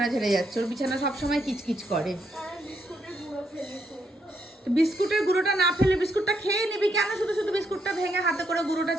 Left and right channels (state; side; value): normal; both; correlation 0.77